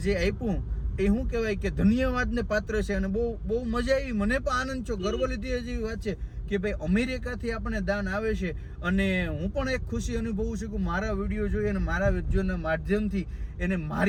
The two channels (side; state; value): both; identical; correlation 1.00